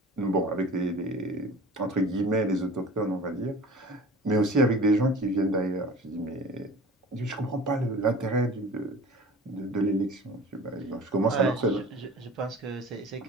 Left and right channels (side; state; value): both; normal; correlation 0.41